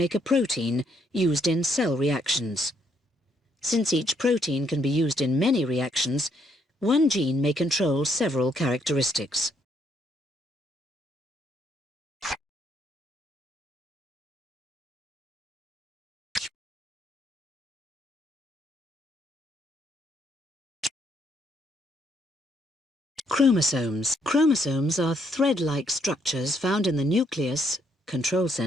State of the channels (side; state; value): both; normal; correlation 0.72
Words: a protein used in cell reactions. Since each protein can be used in many reactions, one gene may control several characteristics. Chromosomes. Chromosomes are thread-like structures found in the nucleus, control